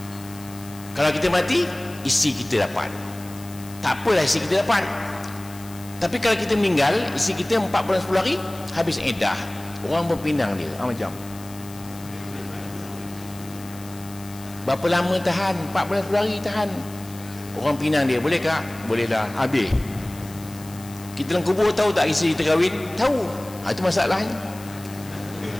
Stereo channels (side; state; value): left; noise; hiss, 19 dB below the sound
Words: Kalau kita mati, isteri kita dapat. Tak apalah isteri kita dapat. Tapi kalau kita meninggal, isteri kita 4 bulan 10 hari habis iddah. Orang berpinang dia, macam berapa lama tahan? 4 bulan 10 hari tahan. Orang pinang dia, boleh kak? Boleh lah, habis. Kita dalam kubur tahu tak isteri kita kahwin? Tahu. Itu masalahnya.